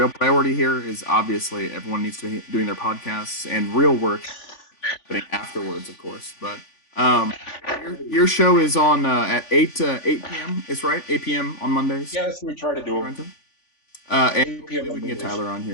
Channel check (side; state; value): right; late; 3.5 ms